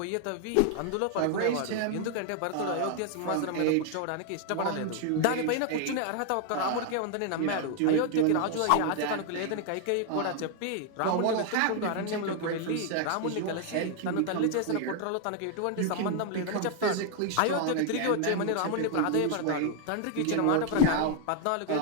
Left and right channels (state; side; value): different; both; correlation 0.00